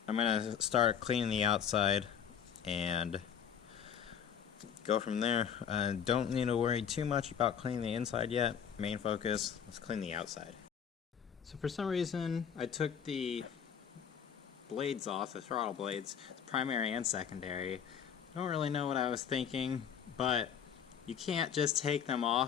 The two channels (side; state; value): right; quieter; 8.1 dB